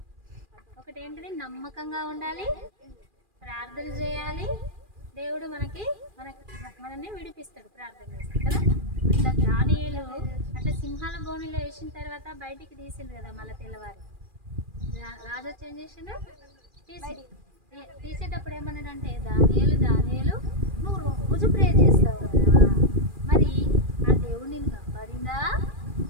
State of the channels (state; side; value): late; left; 2.4 ms